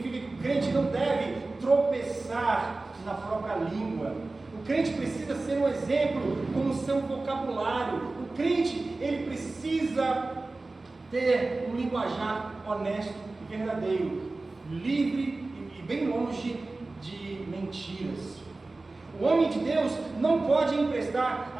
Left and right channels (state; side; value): quieter; left; 3.3 dB